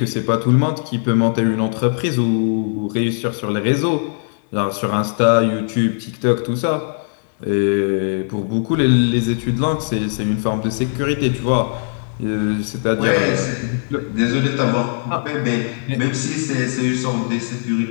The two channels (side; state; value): right; silent; 66 dB below the other